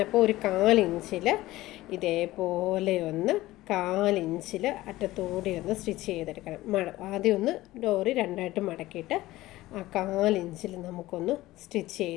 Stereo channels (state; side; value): quieter; right; 17.1 dB